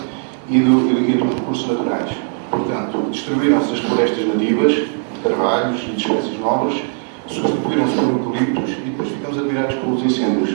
e dos recursos naturais. Portanto, destruíram-se as florestas nativas, de carvalhos e de espécies novas, substituíram-se por eucaliptos e depois ficamos admirados pelos incêndios.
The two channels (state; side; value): silent; left; 57 dB below the other